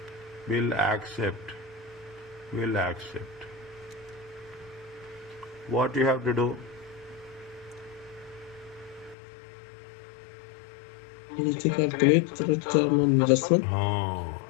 will accept. What you have to do? You need to calculate return on investment.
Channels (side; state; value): right; drops out; at 9.2 s